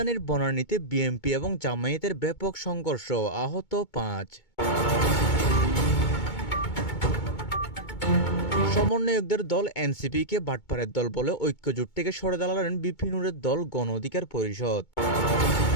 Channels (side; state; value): right; late; 2.2 ms